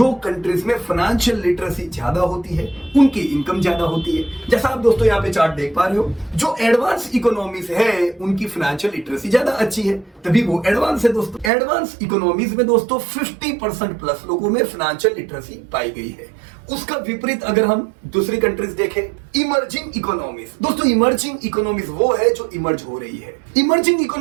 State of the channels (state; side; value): drops out; left; at 11.5 s